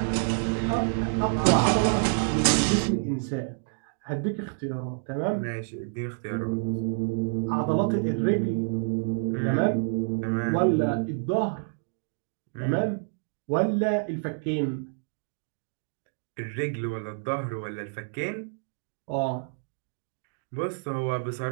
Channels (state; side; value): silent; left; digital silence